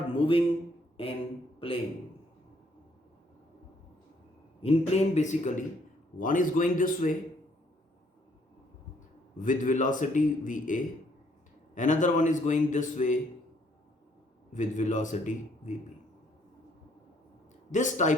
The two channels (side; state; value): both; normal; correlation 0.66